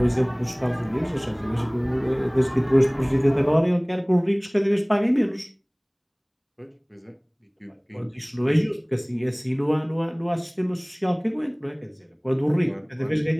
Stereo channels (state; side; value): identical; both; correlation 1.00